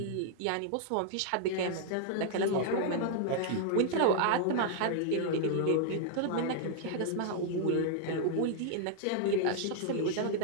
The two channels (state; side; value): different; both; correlation -0.01